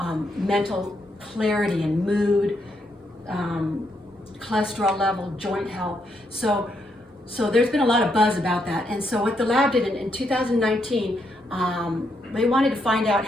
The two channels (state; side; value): normal; both; correlation 0.78